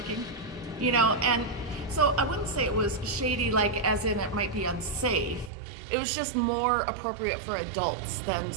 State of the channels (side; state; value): left; drops out; at 5.5 s